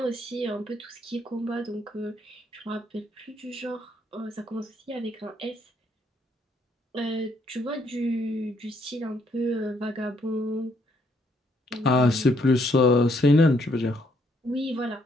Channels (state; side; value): normal; both; correlation 0.70